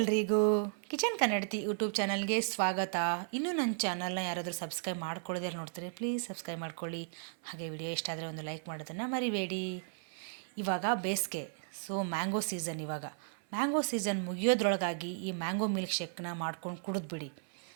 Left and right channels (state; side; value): silent; left; 54 dB below the other